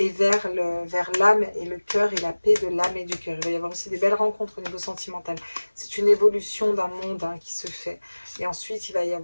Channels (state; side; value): inverted; both; correlation -1.00